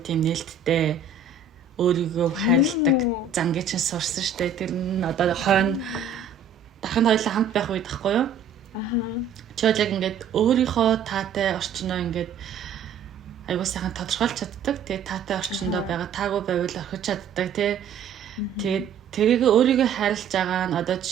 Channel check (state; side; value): quieter; left; 5.9 dB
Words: тийм нээлттэй өөрийгөө хайрладаг зангийн чинь сурсан штэ. Тэр нь одоо хойно дахин хоёулаа хамт байх үед тахгүй юу? Чи яг ингээд өөрийнхөө таатай орчноо ингээд айгу сайхан тодорхойлж чаддаг. Тэгээ таатай орчиндөө байгаа таагүй байвал орхиж чаддаг тий. Тэгээд тэрийг өөрийгөө хайрлаж байгаа нь одоо